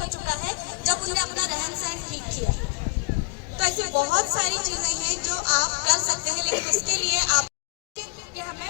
चुका है जब उन्होंने अपना रहन सहन ठीक किया। तो ऐसी बहुत सारी चीजें हैं जो आप कर सकते हैं, लेकिन उसके लिए आप कि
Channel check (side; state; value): right; quieter; 25.2 dB